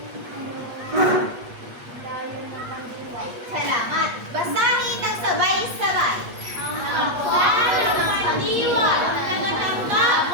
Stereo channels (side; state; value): left; late; 8.3 ms